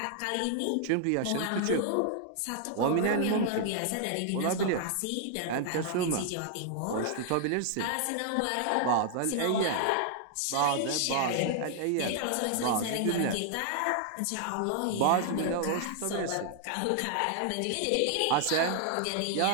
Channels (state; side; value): different; both; correlation 0.00